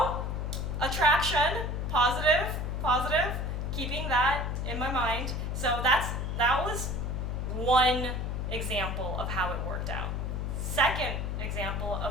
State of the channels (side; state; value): left; noise; hum, 2 dB below the sound